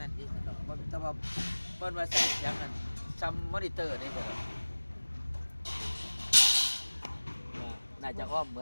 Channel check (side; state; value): both; inverted; correlation -1.00